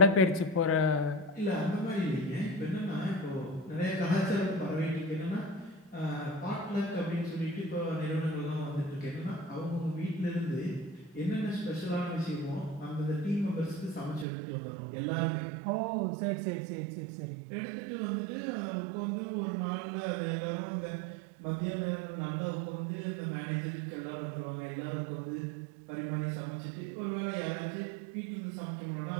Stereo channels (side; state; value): left; drops out; at 14.2 s